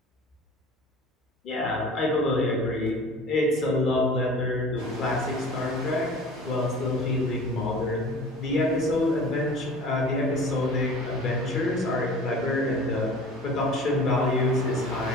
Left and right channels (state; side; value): normal; both; correlation 0.42